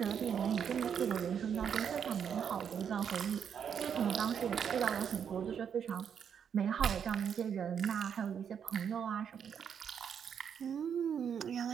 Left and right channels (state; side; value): quieter; left; 7.8 dB